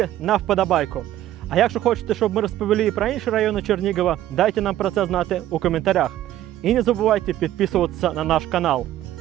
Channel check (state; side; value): quieter; left; 13.2 dB